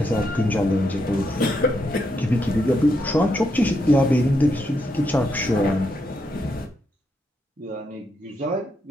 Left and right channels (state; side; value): normal; both; correlation 0.80